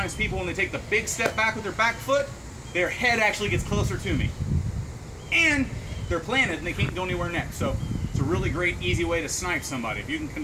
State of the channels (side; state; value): both; identical; correlation 1.00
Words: people, when they take the big step back with their back foot, their head actually gets closer to me. And they're planted and they can't go anywhere next. So it's a really great, easy way to snipe somebody. If you can